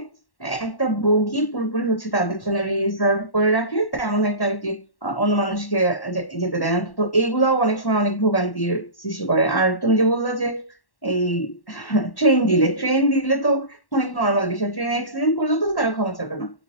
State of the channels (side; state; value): right; late; 1.1 ms